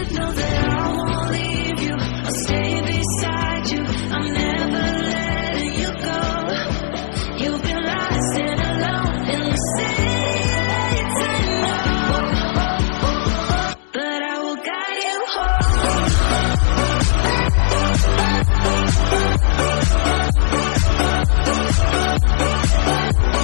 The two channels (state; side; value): silent; right; 67 dB below the other